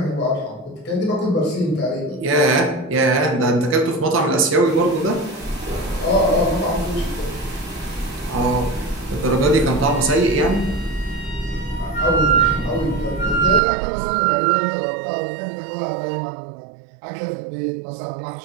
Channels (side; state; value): left; drops out; at 13.6 s